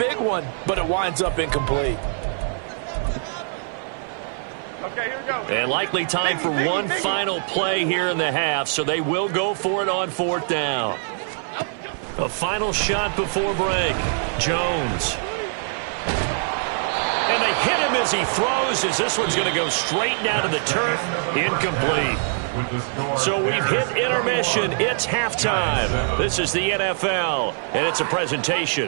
one, but it winds up incomplete. Okay, here we go. And likely time for one final play here in the half, so they will go for it on 4th down. A final shot before break. Jones. And they hit him as he throws, as this one's going to go straight down to the turf. Incomplete. So we've hit intermission. It's halftime. This is the NFL, and it's a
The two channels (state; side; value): silent; left; 55 dB below the other